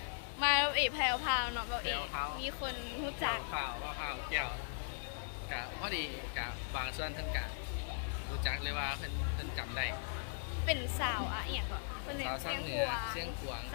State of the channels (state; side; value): silent; right; digital silence